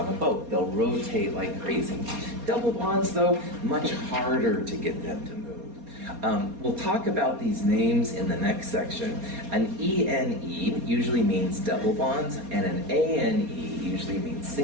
a boat. They'll rotate like crazy. Double bonds, though, much harder to get them to move. We'll talk about these names in the next section. An ENE usually means double bonds, and an ANE usually means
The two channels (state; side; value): late; left; 4.2 ms